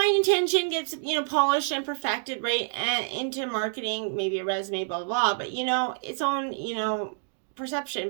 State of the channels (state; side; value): silent; left; digital silence